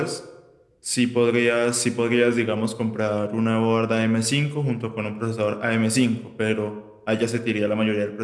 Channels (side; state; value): both; identical; correlation 1.00